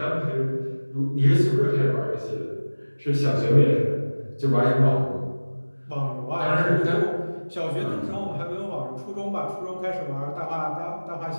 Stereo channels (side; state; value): both; inverted; correlation -1.00